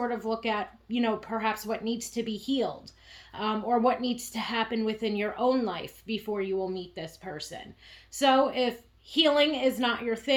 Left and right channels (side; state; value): both; identical; correlation 1.00